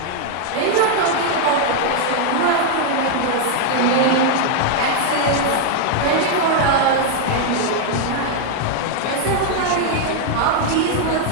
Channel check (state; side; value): different; both; correlation 0.00